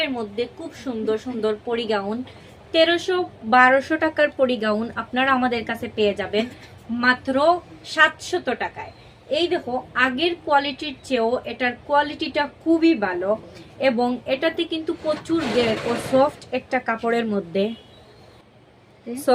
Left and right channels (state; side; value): identical; both; correlation 1.00